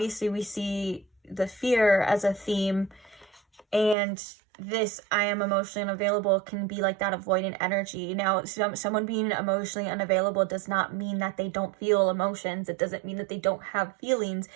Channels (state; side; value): drops out; left; at 4.0 s